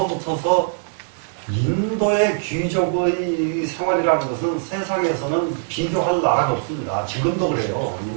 인도의 귀족의 생활이라는 것은 세상에서는 비교할 나라가 없습니다. 지금도 그래요,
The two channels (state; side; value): silent; left; digital silence